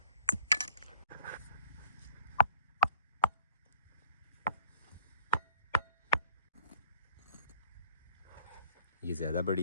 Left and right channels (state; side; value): inverted; both; correlation -0.47